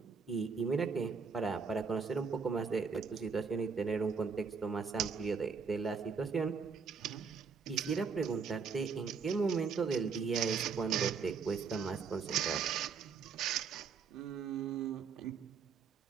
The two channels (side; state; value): left; quieter; 5.5 dB